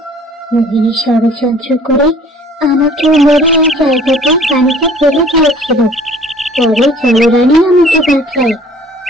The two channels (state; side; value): normal; both; correlation 0.52